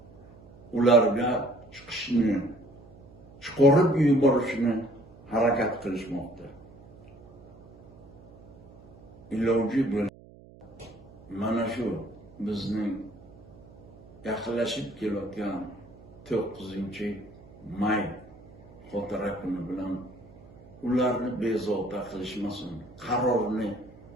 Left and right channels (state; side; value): noise; right; hum, 22 dB below the sound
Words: ularga chiqishni, chiqarib yuborishni harakat qilishmoqda. Iloji bo'lsa mana shu bizning yaqinlashib kelayotgan 9-may xotira kuni bilan ularni bezovta qilishmasin, qarorni